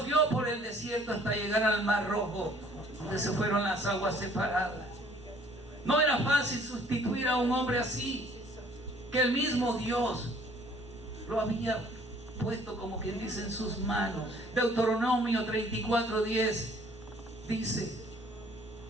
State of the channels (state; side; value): normal; both; correlation 0.58